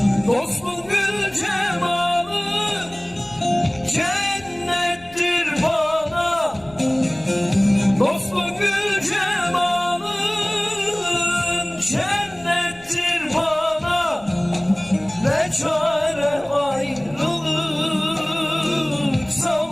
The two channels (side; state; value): left; noise; rumble, 25 dB below the sound